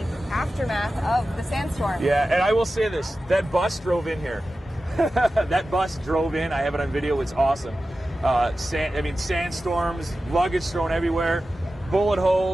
aftermath of the sandstorm. Yeah, and I will say this, that bus drove in here. That bus drove in, I have it on video, it's awesome. Sandstorms, luggage thrown everywhere, bullet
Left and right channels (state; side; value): normal; both; correlation 0.94